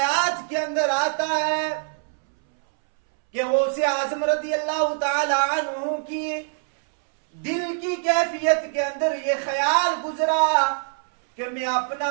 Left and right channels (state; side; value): silent; left; 63 dB below the other